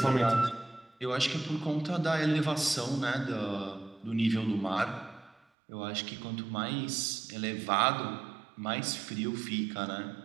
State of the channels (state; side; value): drops out; left; at 5.4 s